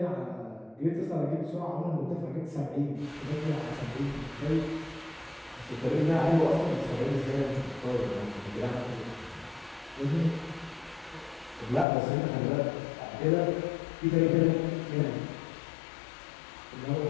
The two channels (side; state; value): right; drops out; at 11.9 s